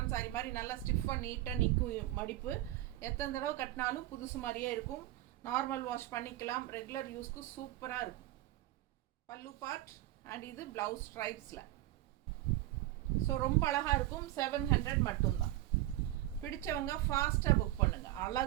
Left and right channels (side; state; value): left; quieter; 15.5 dB